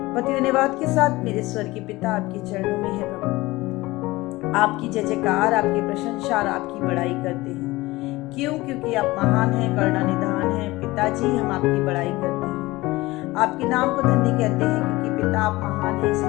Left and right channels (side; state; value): right; quieter; 20.1 dB